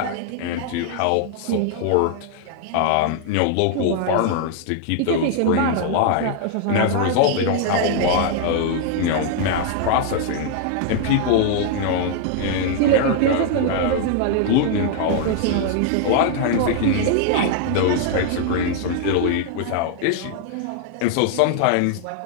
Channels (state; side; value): different; both; correlation 0.00